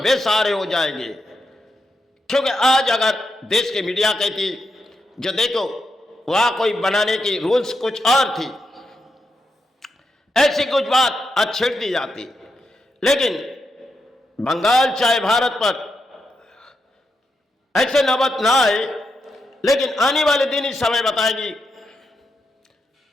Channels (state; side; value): normal; both; correlation 0.84